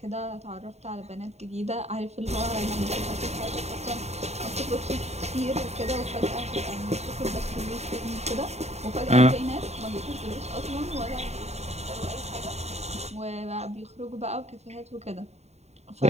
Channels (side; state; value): left; late; 0.32 ms